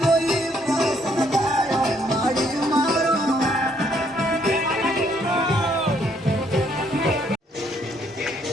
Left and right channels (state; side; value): normal; both; correlation 0.69